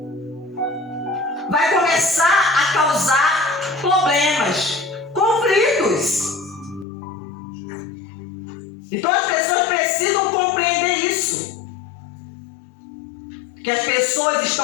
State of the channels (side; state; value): right; drops out; at 6.9 s